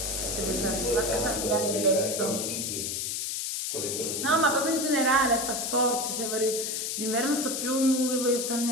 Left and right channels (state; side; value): noise; left; hiss, 2 dB below the sound